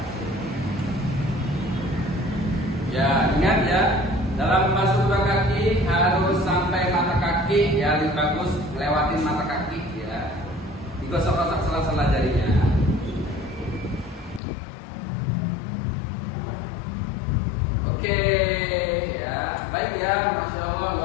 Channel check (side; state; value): right; drops out; at 14.4 s